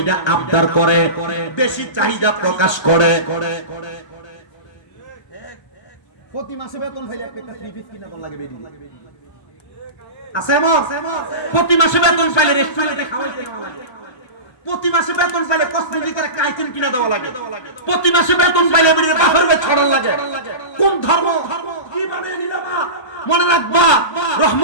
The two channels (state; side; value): late; right; 1.3 ms